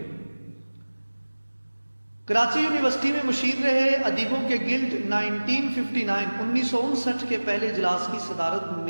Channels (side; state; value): both; inverted; correlation -1.00